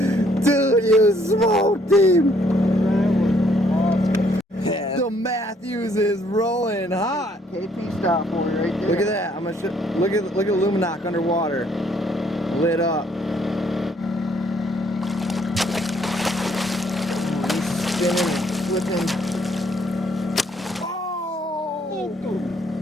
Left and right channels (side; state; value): both; normal; correlation 0.66